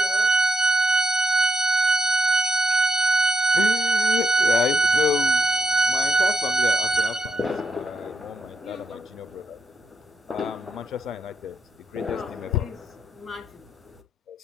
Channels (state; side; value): normal; both; correlation 0.80